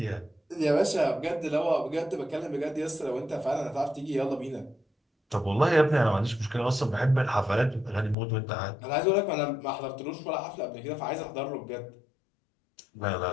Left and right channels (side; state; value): right; drops out; at 8.2 s